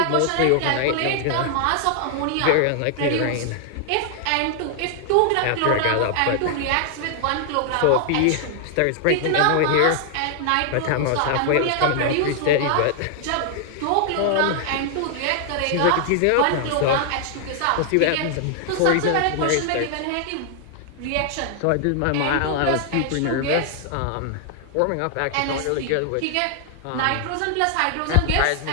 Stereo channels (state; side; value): different; both; correlation 0.00